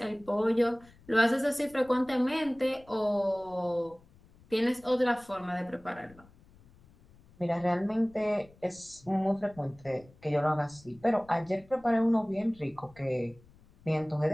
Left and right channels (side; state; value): left; noise; rumble, 26 dB below the sound